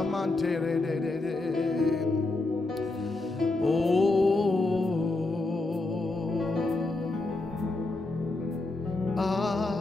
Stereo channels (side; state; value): right; quieter; 3.0 dB